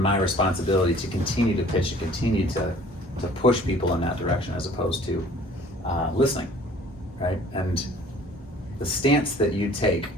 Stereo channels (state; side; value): normal; both; correlation 0.51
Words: responsibility to continue to pitch and continue to push people in that direction as opposed to listening, right? And the stance that you take,